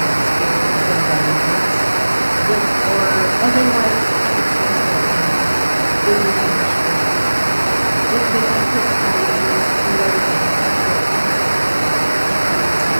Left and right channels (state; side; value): inverted; both; correlation -1.00